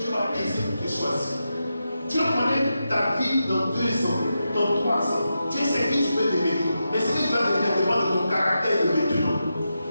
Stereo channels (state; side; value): inverted; both; correlation -0.88